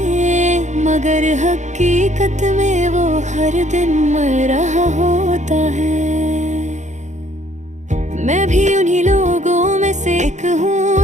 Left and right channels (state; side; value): late; left; 0.34 ms